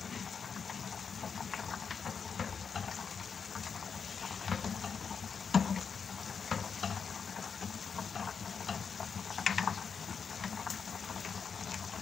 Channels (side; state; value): right; quieter; 6.2 dB